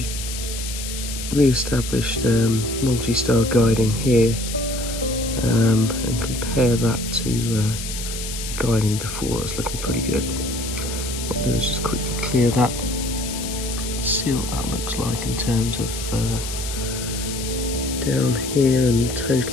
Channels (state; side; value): noise; left; hiss, 8 dB below the sound